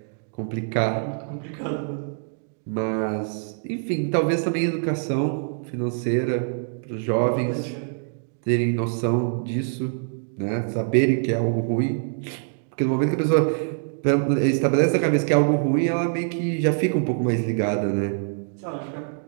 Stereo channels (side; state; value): left; silent; digital silence